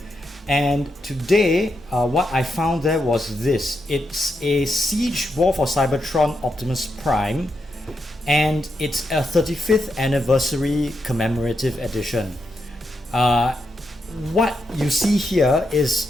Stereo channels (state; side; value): normal; both; correlation 0.83